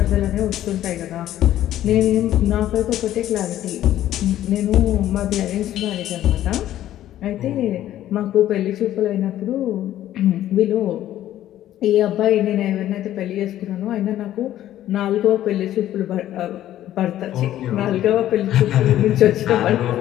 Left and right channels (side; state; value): right; quieter; 12.8 dB